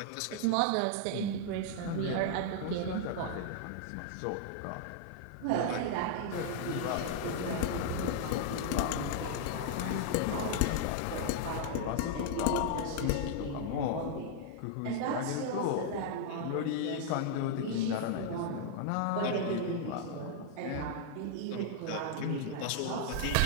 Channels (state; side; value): different; both; correlation -0.01